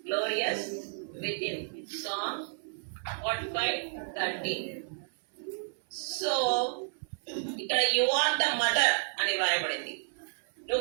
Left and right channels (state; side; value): silent; left; 57 dB below the other